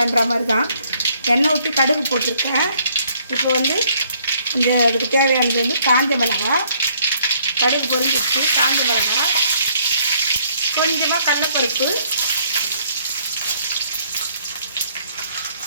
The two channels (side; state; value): both; inverted; correlation -0.65